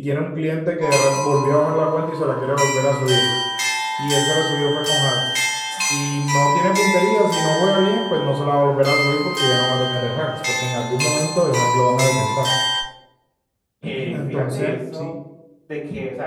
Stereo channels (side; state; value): both; identical; correlation 1.00